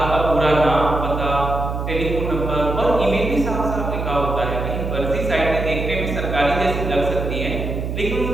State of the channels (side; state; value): right; noise; hum, 4 dB below the sound